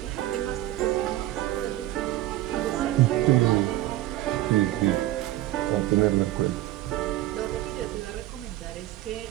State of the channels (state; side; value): quieter; left; 15.2 dB